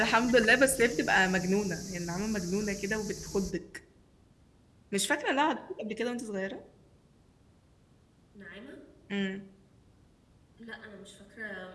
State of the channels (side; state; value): both; identical; correlation 1.00